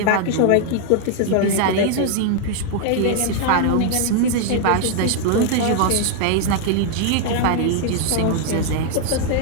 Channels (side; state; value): both; different; correlation -0.01